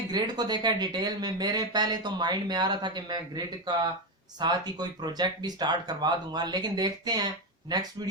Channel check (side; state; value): both; normal; correlation 0.11